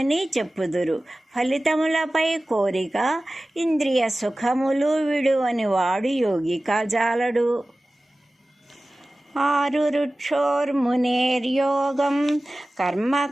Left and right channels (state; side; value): normal; both; correlation 0.97